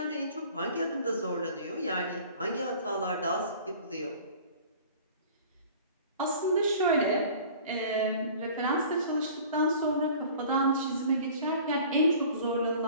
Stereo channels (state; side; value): inverted; both; correlation -0.46